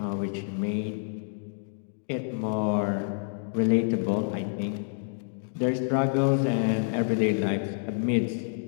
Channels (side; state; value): right; silent; digital silence